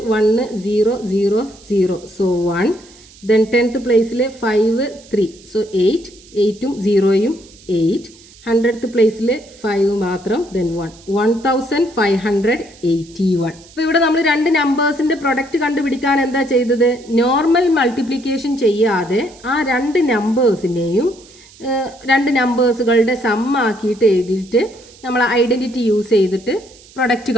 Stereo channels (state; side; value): noise; right; hiss, 24 dB below the sound